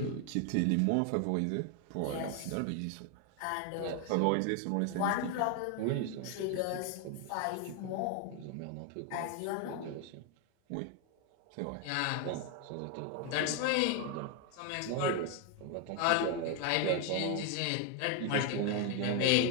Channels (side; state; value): both; different; correlation 0.01